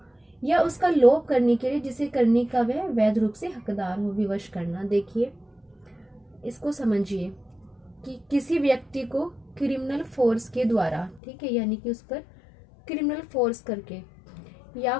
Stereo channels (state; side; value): drops out; right; at 11.2 s